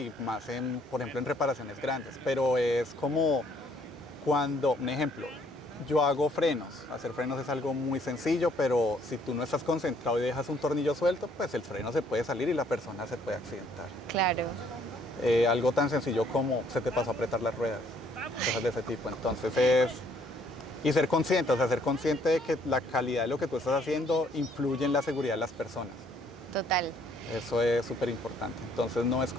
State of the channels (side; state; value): both; normal; correlation 0.64